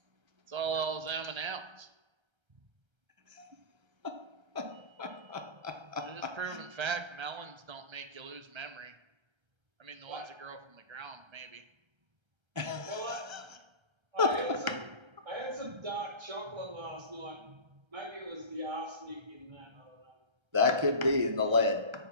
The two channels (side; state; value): left; late; 1.3 ms